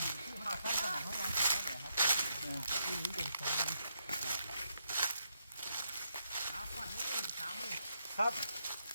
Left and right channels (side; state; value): both; inverted; correlation -0.79